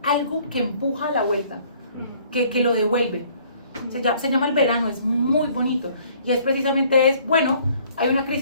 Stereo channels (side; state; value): both; inverted; correlation -0.58